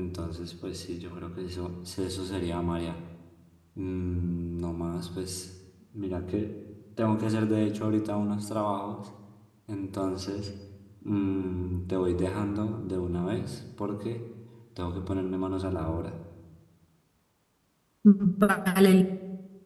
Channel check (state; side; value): identical; both; correlation 1.00